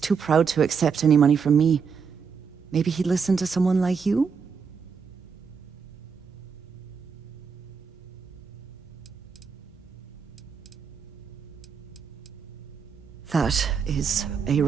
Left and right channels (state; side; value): quieter; left; 6.0 dB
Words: proud to accept any money from me. Maybe he'd listen to someone like you? That is a